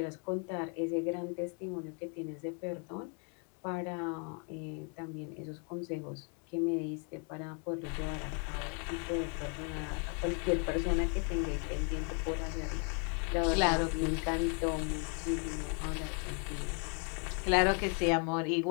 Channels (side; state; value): right; quieter; 39.1 dB